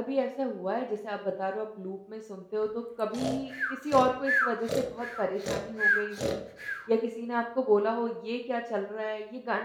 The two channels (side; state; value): both; identical; correlation 1.00